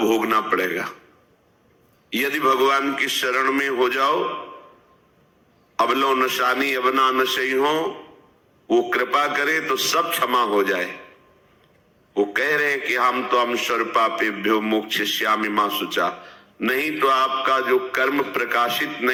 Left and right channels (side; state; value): both; identical; correlation 1.00